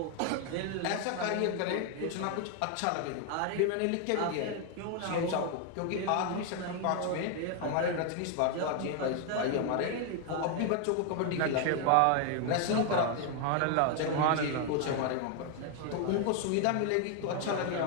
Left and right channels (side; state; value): both; different; correlation 0.00